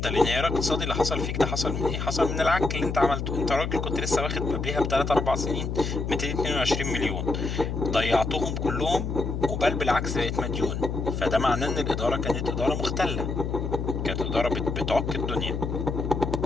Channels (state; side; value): noise; left; hum, 3 dB below the sound